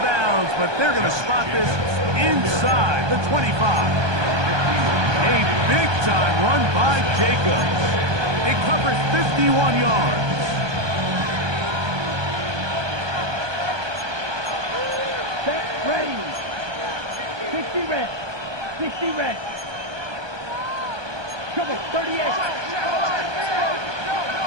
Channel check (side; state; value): left; late; 1.2 ms